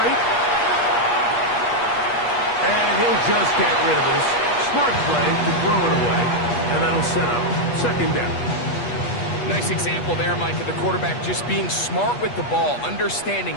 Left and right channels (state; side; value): late; right; 8.3 ms